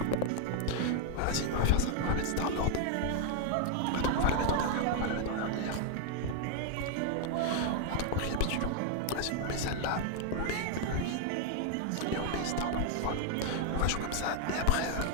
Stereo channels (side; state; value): both; different; correlation 0.00